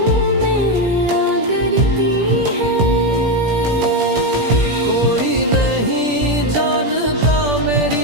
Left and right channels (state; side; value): late; left; 17 ms